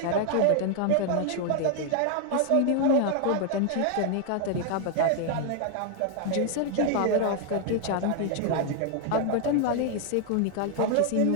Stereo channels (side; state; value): both; different; correlation 0.00